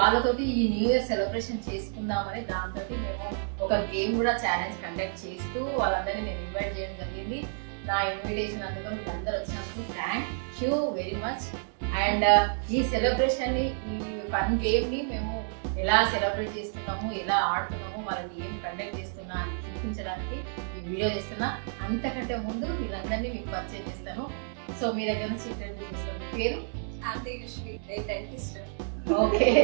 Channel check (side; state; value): left; silent; digital silence